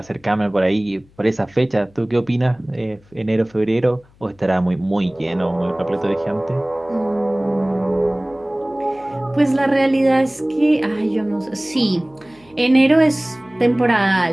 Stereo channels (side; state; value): left; noise; hum, 29 dB below the sound